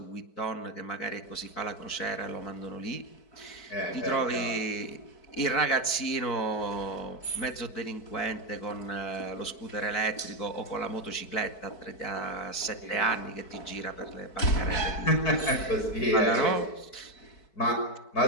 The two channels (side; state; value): right; late; 4.6 ms